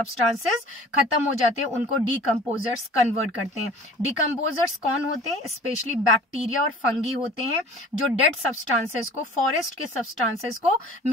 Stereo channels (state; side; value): normal; both; correlation 0.45